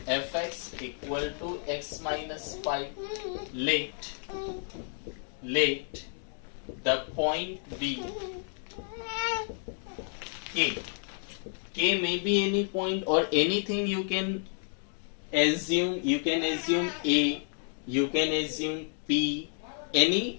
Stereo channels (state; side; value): silent; right; 57 dB below the other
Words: fx equal to x minus 5. Let the point be k. K may be any point or anything you can assume. You can assume A, you can assume P,